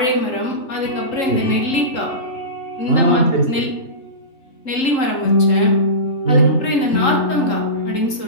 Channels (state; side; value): late; right; 3.8 ms